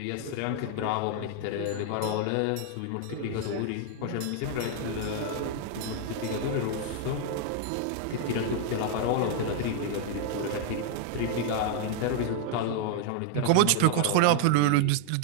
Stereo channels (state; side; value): different; both; correlation 0.00